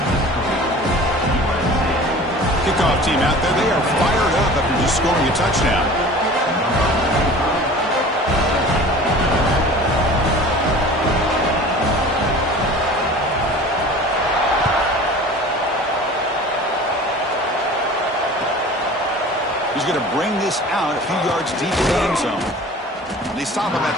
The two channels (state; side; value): normal; both; correlation 0.41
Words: Kickoff team out there. They are fired up after just scoring a touchdown. He's going to bring this out a few yards deep in the end zone. They stop him at